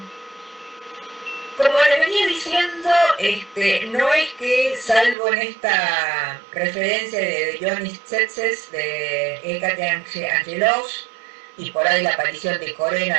Como les venía diciendo, no es que, salvo en esta referencia de Johnny Tsetses, de Hécate Angelos, y por ahí la aparición de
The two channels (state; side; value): drops out; left; at 5.2 s